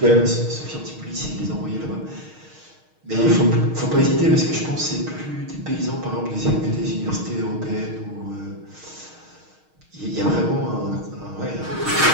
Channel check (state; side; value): late; left; 6.4 ms